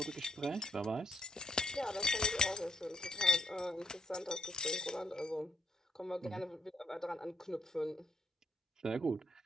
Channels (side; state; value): both; normal; correlation 0.72